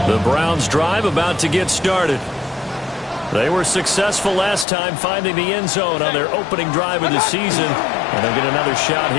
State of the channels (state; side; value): drops out; right; at 4.7 s